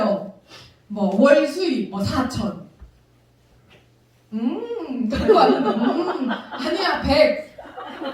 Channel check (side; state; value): both; identical; correlation 1.00